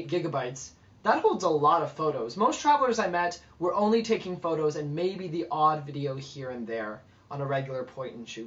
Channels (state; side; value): identical; both; correlation 1.00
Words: gigabytes, that holds a lot of photos. Most travelers I met were only taking photos and maybe the odd video here and there on a regular